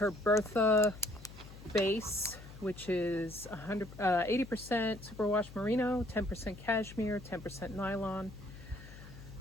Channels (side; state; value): left; noise; hum, 16 dB below the sound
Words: Bertha base, which is 80% superwash merino, 10% cashmere, 10% nylon.